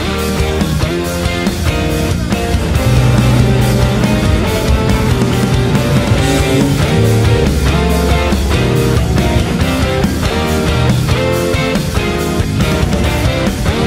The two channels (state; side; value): identical; both; correlation 1.00